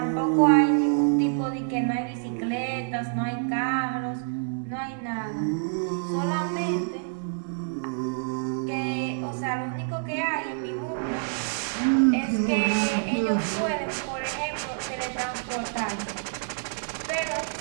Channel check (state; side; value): silent; left; digital silence